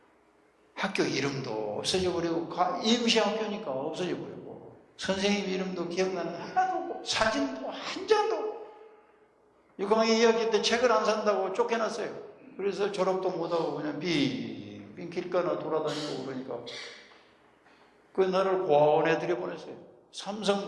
학교 이름도 없어져 버리고 임시 학교니까 없어져 버리고 선생님 이름도 기억나는 하나도 없고 사진도 한 장도 없고 6학년 2학기 때 책을 안 산다고 쫓겨났어요. 그래서 졸업도 못하고 그냥 빙빙 길가나 돌아다니고 그러니까 나를 고아원에 들여보냈어요.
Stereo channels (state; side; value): identical; both; correlation 1.00